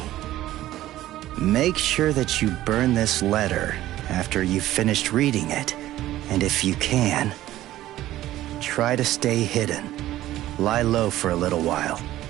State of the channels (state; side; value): quieter; left; 14.6 dB